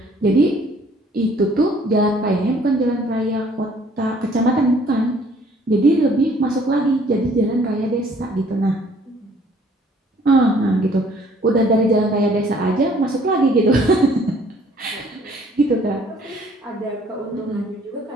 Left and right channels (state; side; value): normal; both; correlation 0.59